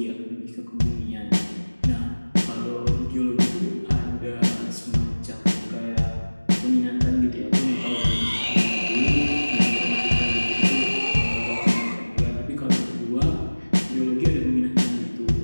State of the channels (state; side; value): inverted; both; correlation -1.00